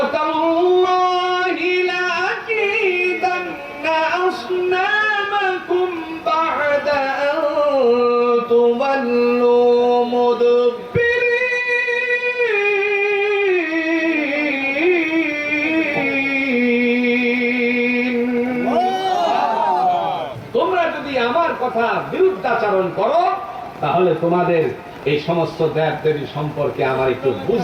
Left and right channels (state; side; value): identical; both; correlation 1.00